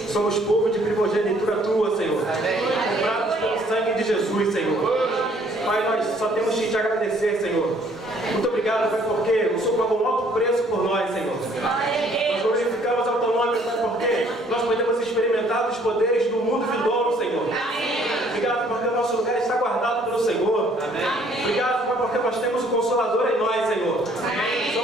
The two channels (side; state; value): both; normal; correlation 0.61